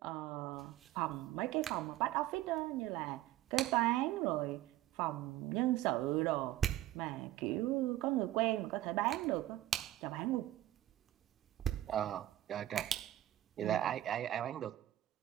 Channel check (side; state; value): left; quieter; 14.0 dB